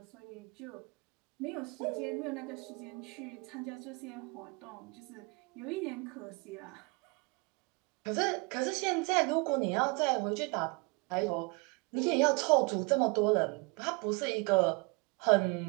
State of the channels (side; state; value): left; quieter; 29.1 dB